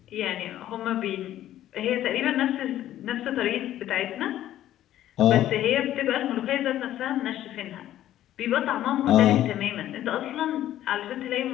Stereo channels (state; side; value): quieter; right; 12.7 dB